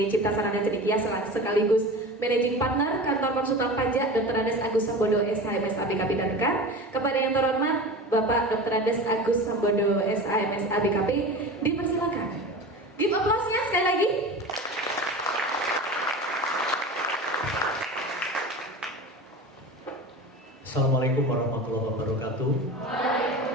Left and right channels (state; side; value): normal; both; correlation 0.32